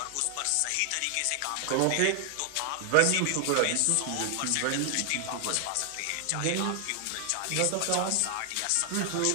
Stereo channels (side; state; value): both; different; correlation 0.00